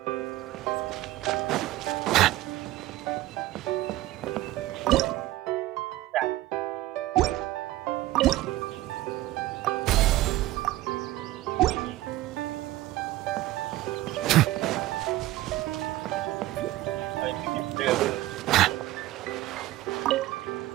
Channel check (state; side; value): quieter; left; 16.2 dB